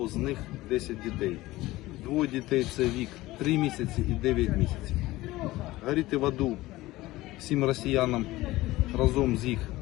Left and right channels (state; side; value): quieter; right; 18.1 dB